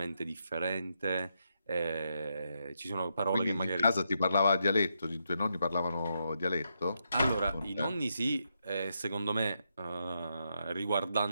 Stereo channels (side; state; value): both; inverted; correlation -0.81